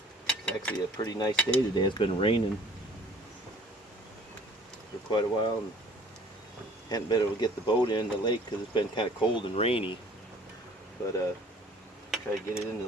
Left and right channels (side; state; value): both; normal; correlation 0.53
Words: It's actually a pretty nice day today. It's been raining for quite a while, and hadn't been able to get the boat in the lake because it's been kind of cold and rainy, but try to get it in the